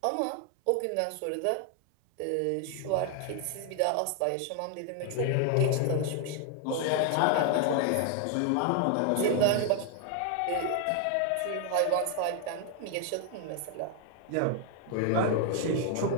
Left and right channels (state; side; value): different; both; correlation 0.00